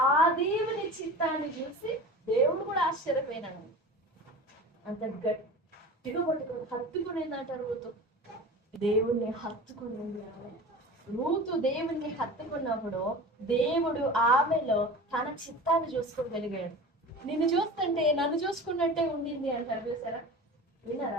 ఆ దేవుని చిత్తాన్ని చూసి దేవుడు కూడా ఆశ్చర్యపోయినాడు. అంత గట్టిగా హత్తుకునేందంట రూతు. దేవుణ్ణి హత్తుకునేది ఆమె. రూతు దేవుణ్ణి హత్తుకున్నప్పుడు దేవుడు ఆమెలో తన చిత్తాన్ని చూసుకోగలిగాడు. నిన్ను చూస్తుంటే నన్ను చూసుకున్నట్టే ఉండింది అంటారు, చూసారా? విన్నారా?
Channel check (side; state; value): both; normal; correlation 0.35